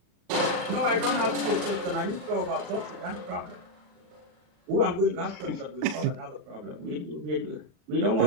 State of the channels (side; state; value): left; late; 39 ms